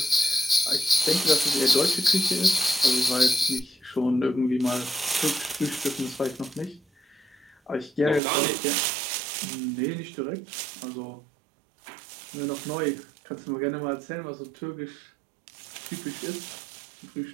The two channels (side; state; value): left; drops out; at 8.2 s